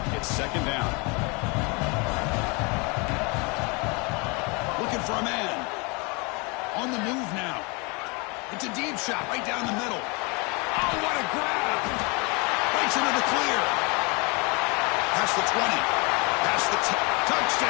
It's 2nd down. Looking for a man. On the move now. It's a deep shot right down the middle. Oh, what a grab. Breaks into the clear. Past the 20. Past the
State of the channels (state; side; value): quieter; right; 29.8 dB